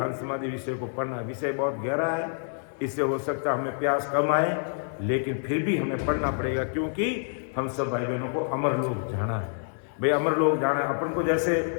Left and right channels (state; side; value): silent; right; 60 dB below the other